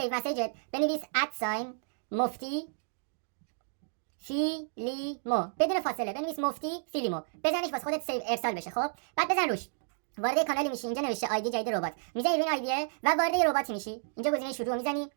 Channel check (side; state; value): left; silent; digital silence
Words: مسیجت بنویس مفتی فیلیمو بدون فاصله. بنویس مفتی فیلیمو، بزنش واسه خودت سیو ارسال بشه. خب بعد بزن روش. وارد کانالی میشی. اینجا نوشته آیدی جدید ربات. میزنی روی این آیدیه و وارد یه رباتی میشی. اینجا گزینه شروع میزنی.